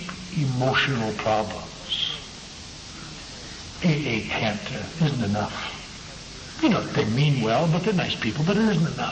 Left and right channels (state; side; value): identical; both; correlation 1.00